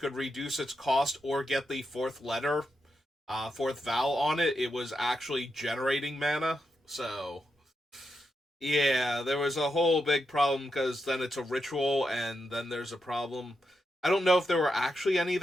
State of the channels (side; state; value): both; normal; correlation 0.85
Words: reduce its cost or get the fourth vowel on it, it was actually generating mana. So yeah, there was a whole big problem because then it's a ritual, and then there's a problem. I don't know if there were actually any